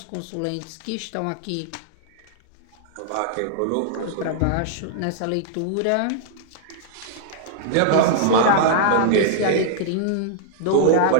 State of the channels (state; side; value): different; both; correlation -0.01